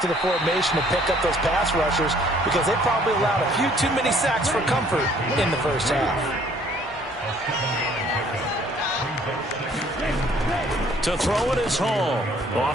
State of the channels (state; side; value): normal; both; correlation 0.60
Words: to the formation to pick up those pass rushers because they probably allowed a few too many sacks for comfort in the first half. To throw it is Hall.